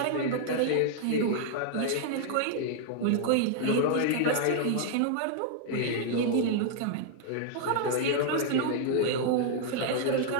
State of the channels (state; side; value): different; both; correlation -0.01